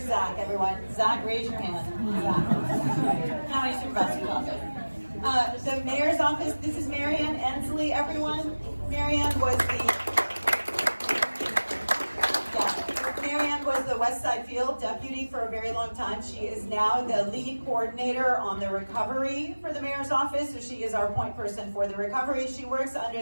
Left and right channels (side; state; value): both; inverted; correlation -1.00